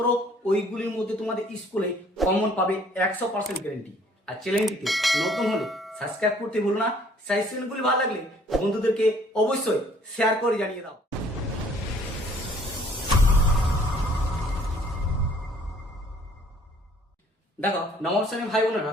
ওইগুলির মধ্যে তোমাদের স্কুলে কমন পাবে 100% গ্যারেন্টি। আর চ্যানেলটিতে নতুন হলে সাবস্ক্রাইব করতে ভুলো না। সাজেশনগুলি ভালো লাগলে বন্ধুদেরকে অবশ্যই শেয়ার করে জানিয়ে দাও। দেখো নবম শ্রেণীর ভাই বোনেরা,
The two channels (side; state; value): both; normal; correlation 0.59